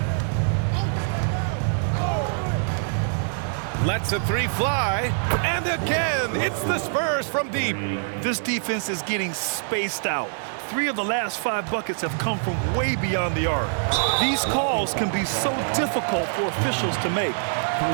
Lets a three fly, and again, it's the Spurs from deep. This defense is getting spaced out. 3 of the last 5 buckets have come from way beyond the arc. These calls can be so difficult for officials to make.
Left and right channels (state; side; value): silent; left; digital silence